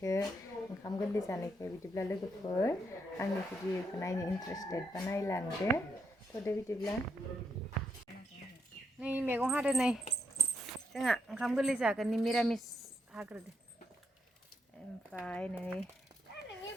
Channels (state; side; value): normal; both; correlation 0.78